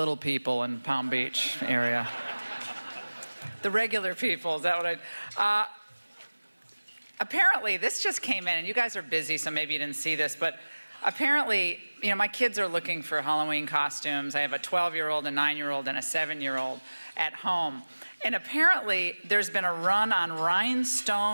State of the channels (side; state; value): both; inverted; correlation -1.00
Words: people in Palm Beach area. The regular people, is that what I... apparently, this just came in, and you guys are busy, so maybe you didn't see this, but apparently, you know, my kids are looking for Halloween costumes. I have a 12-year-old, a 9-year-old, and a 7-year-old at home. And apparently, there's been a run on